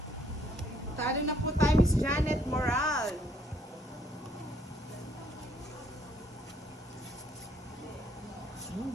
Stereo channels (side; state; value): both; normal; correlation 0.66